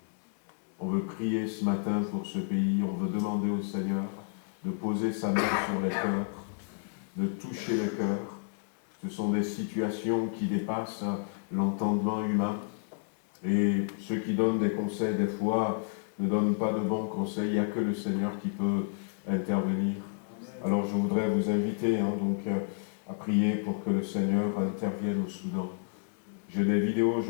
On veut prier ce matin pour ce pays, on veut demander au Seigneur de poser sa main sur les cœurs, de toucher les cœurs. Ce sont des situations qui dépassent l'entendement humain. Et ceux qui donnent des conseils, des fois, ne donne pas de bons conseils, il n'y a que le Seigneur qui peut intervenir. Alors je voudrais vous inviter à prier pour que le Seigneur intervienne au Soudan. J'ai des vidéos,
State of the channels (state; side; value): silent; right; digital silence